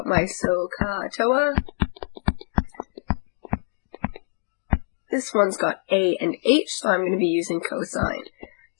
my SOHCAHTOA, this one's got A and H, so I'm going to be using cosine.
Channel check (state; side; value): silent; right; digital silence